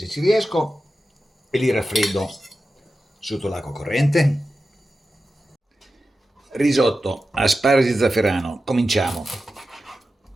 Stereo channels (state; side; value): normal; both; correlation 0.92